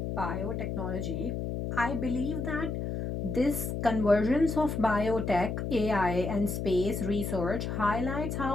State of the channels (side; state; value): left; noise; hum, 3 dB below the sound